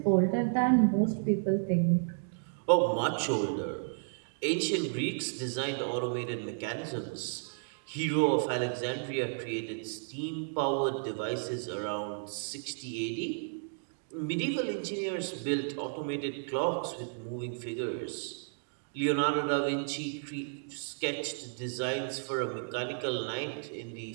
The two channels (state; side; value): silent; left; digital silence